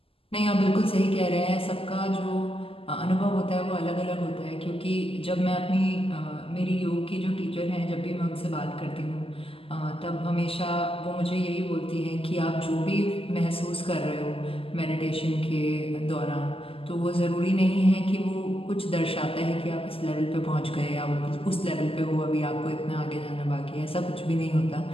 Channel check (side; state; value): right; late; 0.27 ms